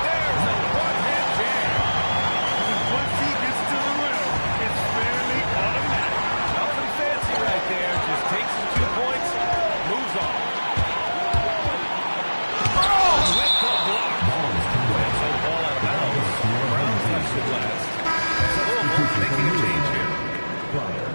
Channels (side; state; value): both; inverted; correlation -1.00